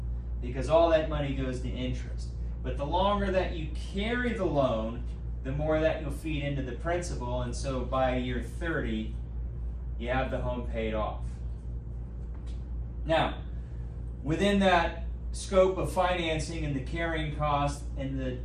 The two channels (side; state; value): both; identical; correlation 1.00